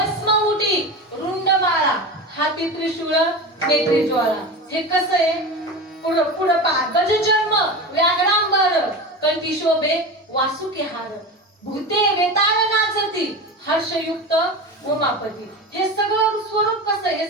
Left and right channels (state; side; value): normal; both; correlation 0.26